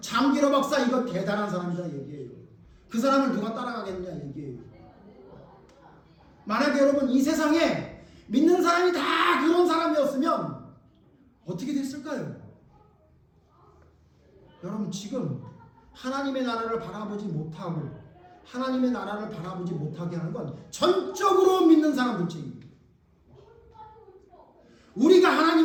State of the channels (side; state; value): both; identical; correlation 1.00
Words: 장기러 박사 이거 대단한 사람이다 얘기해요. 그 사람을 누가 따라가겠냐 얘기해요. 만약에 여러분 이 세상에 믿는 사람이 다 그런 사람이었으면 어떻게 됐을까요? 여러분 지금 하나님의 나라를 바라보지 못하고 하나님의 나라를 바라보지 못하게 하는 건 전적으로 믿는 사람들 책임입니다. 우리가